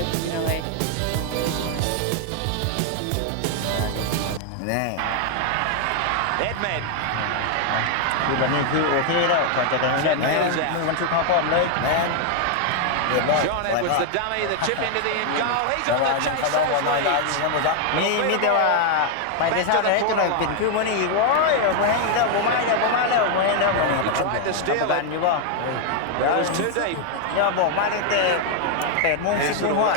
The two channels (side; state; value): both; different; correlation 0.00